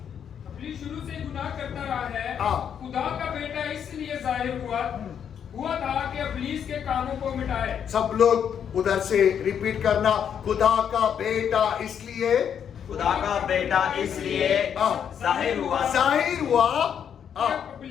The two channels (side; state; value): right; quieter; 8.3 dB